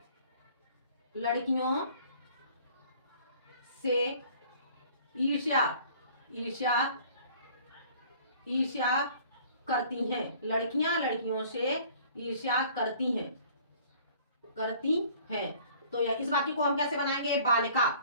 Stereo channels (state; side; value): inverted; both; correlation -0.53